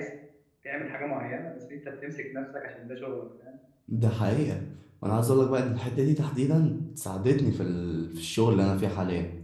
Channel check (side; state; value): both; identical; correlation 1.00